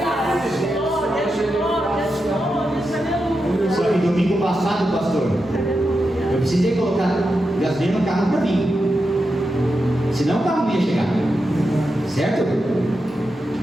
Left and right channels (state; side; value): normal; both; correlation 0.88